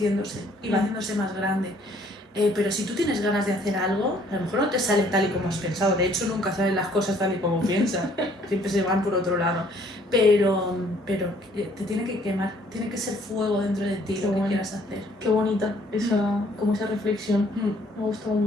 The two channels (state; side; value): normal; both; correlation 0.61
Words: y va haciéndose más grande. Pero si tú tienes ganas de hacer algo, a lo mejor no te sale tal y como has pensado. De hecho, nunca salen las cosas tal y como piensas. Siempre se van por otro lado. Pero te tiene que quemar, tiene que ser fuego dentro de ti lo que quieras hacer. Qué bonita como esa reflexión. Me ha gustado